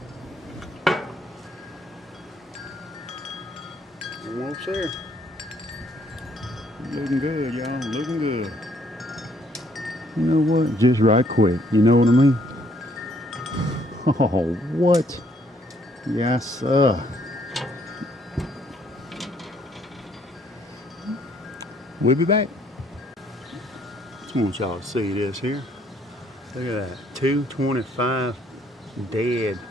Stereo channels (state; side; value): normal; both; correlation 0.66